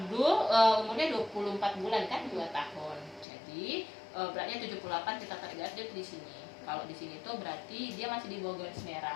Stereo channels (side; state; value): right; drops out; at 3.2 s